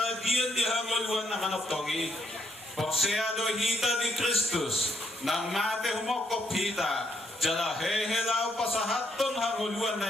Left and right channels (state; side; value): normal; both; correlation 0.73